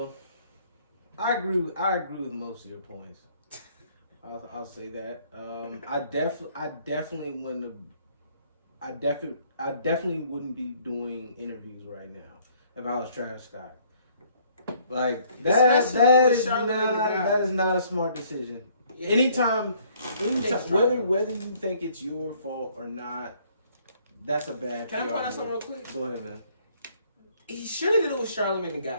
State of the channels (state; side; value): inverted; both; correlation -0.62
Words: I agree with most of your points. I'll say that. I definitely wouldn't be doing interviews right now. if I was Travis Scott. Like that is not a smart decision. Yeah. Anytime, whether you think it's your fault or not, that's a bad. Can I point out something real quick? Go ahead, man. He should have did it with Charlamagne the